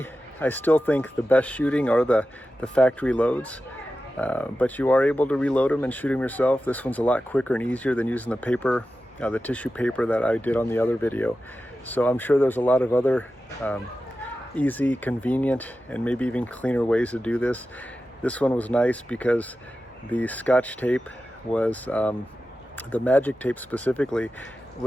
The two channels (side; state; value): both; normal; correlation 0.93